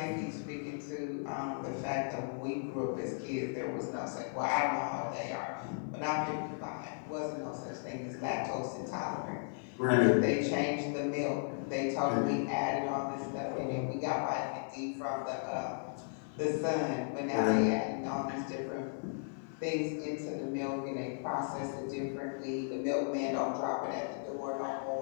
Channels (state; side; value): silent; right; 54 dB below the other